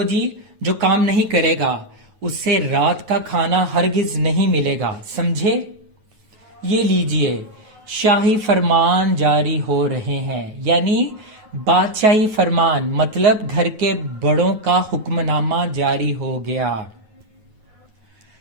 جی، جو کام نہیں کرے گا اس سے رات کا کھانا ہرگز نہیں ملے گا، سمجھے؟ یہ لیجئے شاہی فرمان جاری ہو رہے ہیں، یعنی بادشاہی فرمان، مطلب گھر کے بڑوں کا حکم نامہ جاری ہو گیا۔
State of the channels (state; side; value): late; left; 9.4 ms